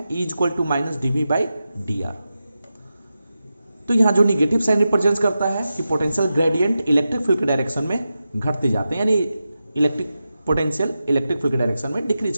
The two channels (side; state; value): both; inverted; correlation -0.91